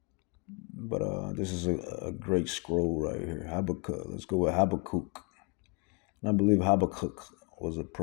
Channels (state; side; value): quieter; right; 32.0 dB